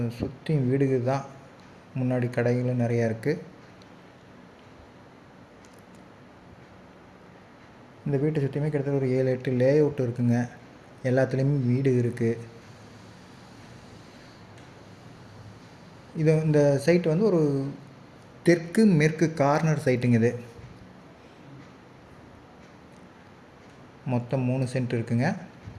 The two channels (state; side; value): identical; both; correlation 1.00